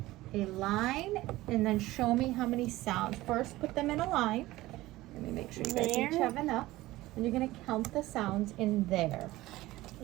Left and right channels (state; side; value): quieter; left; 17.7 dB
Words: a line and then show me how many sounds. First, put them in a line. Let me make sure you guys each have enough. And you're going to count the sounds in there.